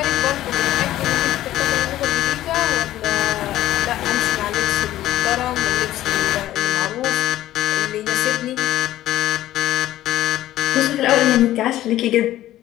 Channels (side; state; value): right; quieter; 14.1 dB